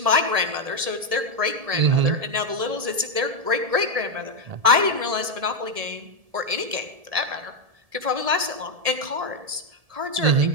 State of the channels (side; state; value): left; late; 1.7 ms